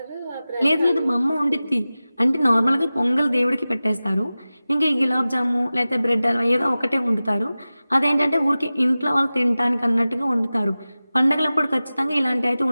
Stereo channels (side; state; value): both; inverted; correlation -0.96